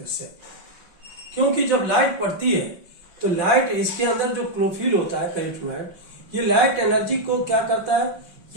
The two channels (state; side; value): late; left; 5.5 ms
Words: इससे, क्योंकि जब लाइट पड़ती है तो लाइट, इसके अंदर जो क्लोरोफिल होता है कैरोटीनॉइड, ये लाइट एनर्जी को क्या करता है,